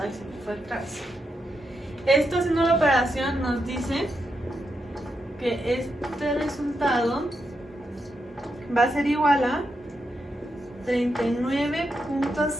se me fue atrás. Esto, haciendo la operación, nos dice que este resultado va a ser igual a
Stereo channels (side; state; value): both; normal; correlation 0.84